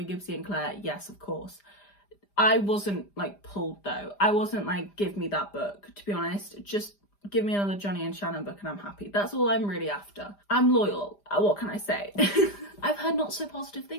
Gibbsy and Claire? Yes, of course. I wasn't like pulled though. I wasn't like, give me that book, to be honest. Just give me another Johnny and Shannon book and I'm happy. That's all I'm really after. I'm loyal. What can I say? I've heard not so positive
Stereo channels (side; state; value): right; late; 5.0 ms